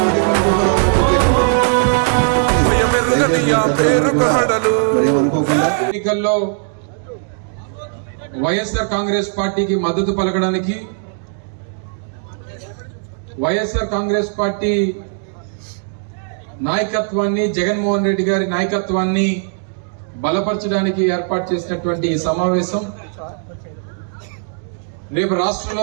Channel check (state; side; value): silent; left; 67 dB below the other